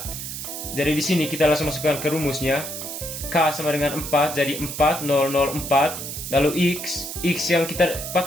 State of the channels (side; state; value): right; noise; hiss, 7 dB below the sound